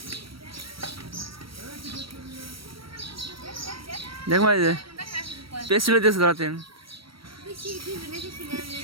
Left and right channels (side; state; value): left; late; 0.75 ms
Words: দেখ ভাই যে পেজ চুলাইতেছে ধরাতেন,